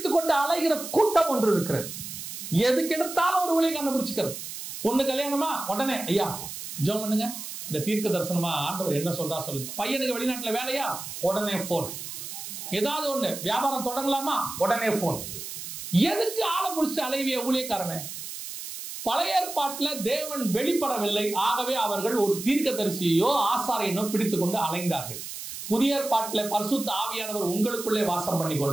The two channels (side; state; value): right; noise; hiss, 9 dB below the sound